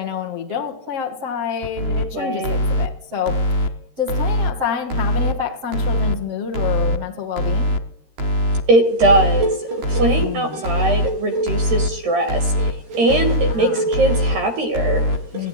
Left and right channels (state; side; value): late; left; 13 ms